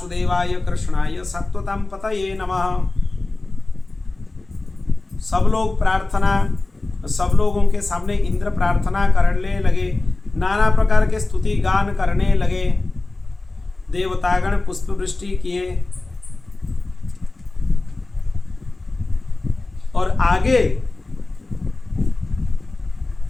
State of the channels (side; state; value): right; quieter; 3.2 dB